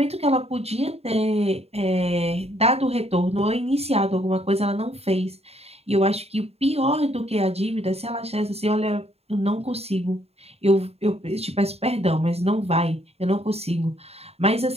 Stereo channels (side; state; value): left; late; 0.30 ms